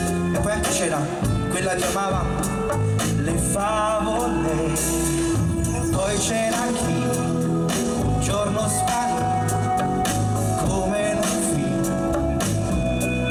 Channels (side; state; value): both; identical; correlation 1.00